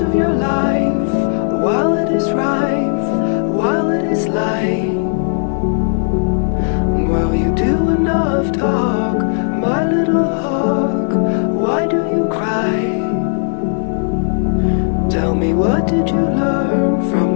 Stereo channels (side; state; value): right; silent; 59 dB below the other